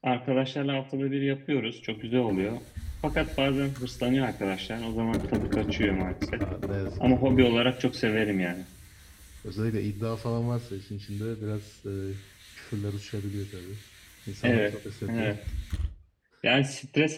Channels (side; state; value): both; identical; correlation 1.00